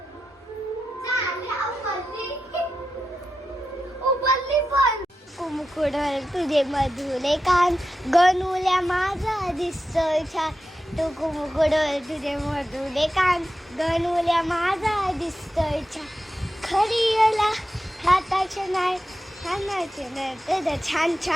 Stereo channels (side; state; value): both; normal; correlation 0.90